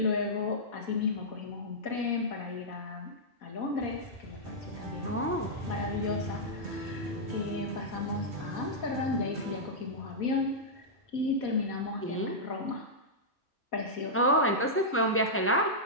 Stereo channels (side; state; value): both; normal; correlation -0.10